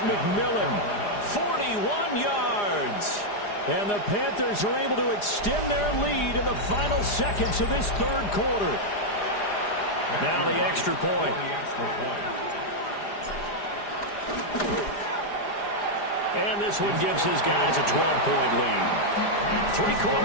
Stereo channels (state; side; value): late; right; 4.9 ms